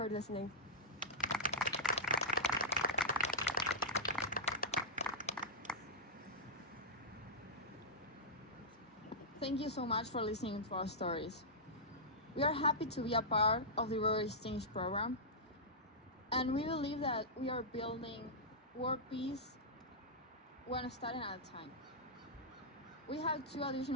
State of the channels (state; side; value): normal; both; correlation -0.11